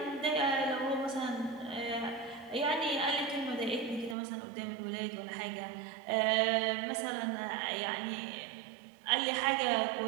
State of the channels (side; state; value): left; drops out; at 4.2 s